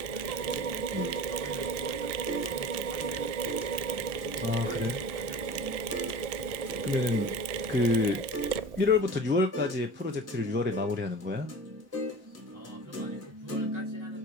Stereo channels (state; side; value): late; left; 1.7 ms